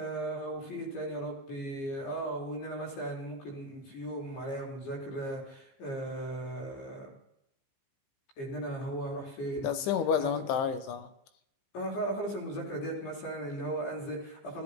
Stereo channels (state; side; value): late; right; 15 ms